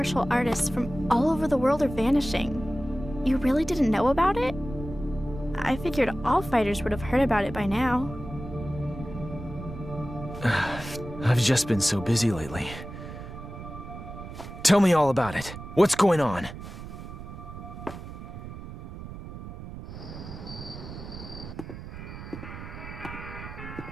artists from all over the world are vanishing. You really didn't know about it? I figured all fighters would have heard about it by now. I've just been so busy lately. Tell me all about it. What's going on?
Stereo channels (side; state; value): right; noise; rumble, 11 dB below the sound